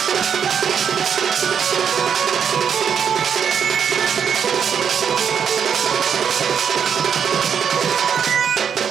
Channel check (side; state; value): left; quieter; 7.5 dB